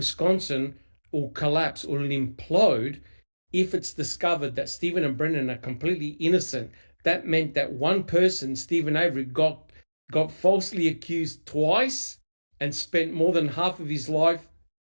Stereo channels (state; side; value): inverted; both; correlation -1.00